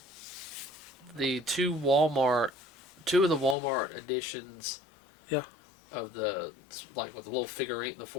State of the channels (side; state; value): right; drops out; at 3.6 s